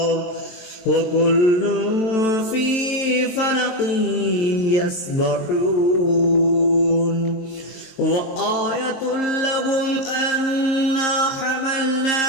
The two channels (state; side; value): late; right; 23 ms